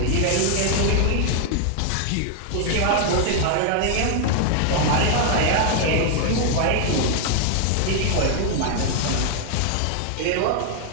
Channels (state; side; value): different; both; correlation 0.00